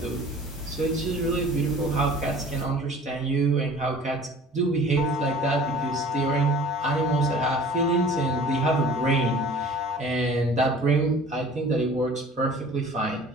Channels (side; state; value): both; normal; correlation 0.46